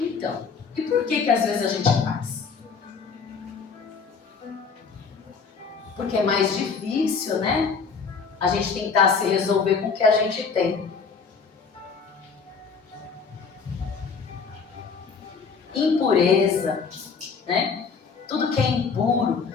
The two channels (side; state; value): right; quieter; 5.4 dB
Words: e por que às vezes a gente faz? Porque é mais difícil, né? A gente tentar se resolver com o que a gente tem. Impureza, né? Tudo que é impuro.